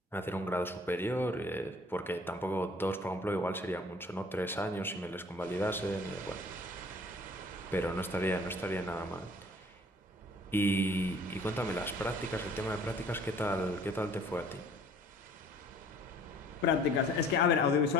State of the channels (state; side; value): normal; both; correlation 0.53